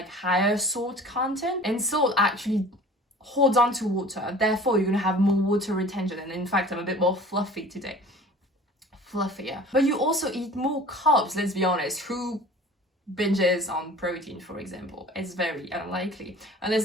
higher salt content, and salt actually holds on to water. Therefore, you're gonna have more water retention. And in fact, I'm a bit more fluffy today. Fluffier. But you also eat more carbs, let's be honest. Who binges on protein, for example? It's very unlikely, unless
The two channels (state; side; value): normal; both; correlation 0.44